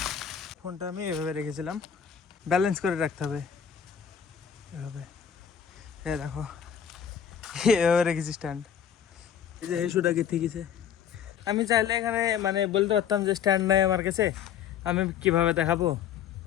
ফোনটা আমি এভাবে রেখেছিলাম, ব্যালেন্স করে রাখতে হবে এভাবে। দেখো এভাবে রেখেছি স্ট্যান্ড। এই যে হেসুটা গেথে গেছে। আমি চাইলে এখানে মানে বলতে পারতাম যে স্ট্যান্ড নাই আমার কাছে, আমি কিভাবে দেখাবো,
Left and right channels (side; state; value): right; quieter; 8.3 dB